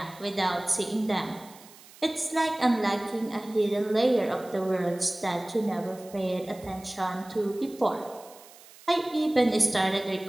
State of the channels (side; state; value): right; noise; hiss, 22 dB below the sound